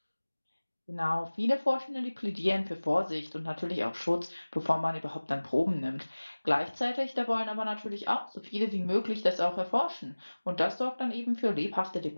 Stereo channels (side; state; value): both; inverted; correlation -1.00